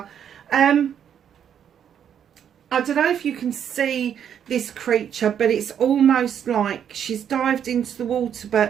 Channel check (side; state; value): left; quieter; 8.8 dB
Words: I don't know if you can see this creature, but it's almost like she's dived into the water,